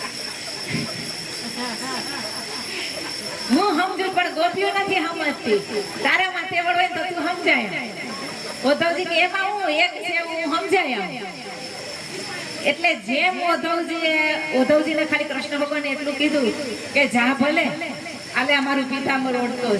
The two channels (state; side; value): identical; both; correlation 1.00